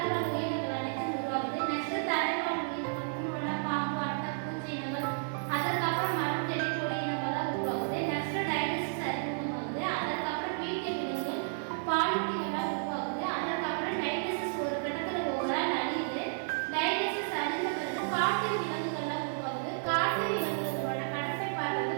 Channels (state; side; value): silent; left; 56 dB below the other